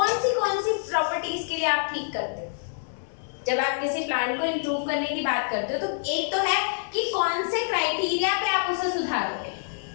सी प्रॉपर्टीज के लिए आप ठीक करते हो जब आप किसी प्लांट को इंप्रूव करने की बात करते हो? तो एक तो है कि कौन से क्राइटेरिया पे आप उसे सुधारोगे,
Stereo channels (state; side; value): silent; right; digital silence